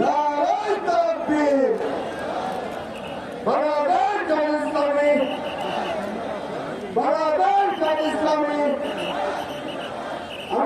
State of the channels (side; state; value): both; identical; correlation 1.00